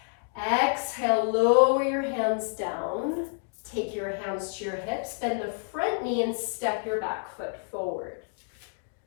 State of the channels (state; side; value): silent; right; digital silence